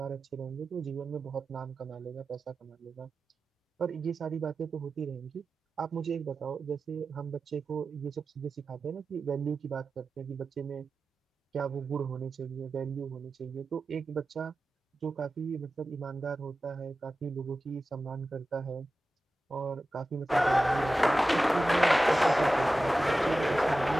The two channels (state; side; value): normal; both; correlation 0.94